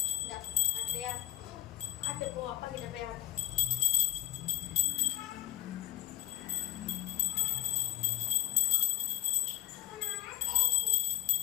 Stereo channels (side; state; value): right; quieter; 14.7 dB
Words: இந்தா, அத்தையா, ஆட்டு போ, அப்பா கிட்ட போய் ஆட்டு.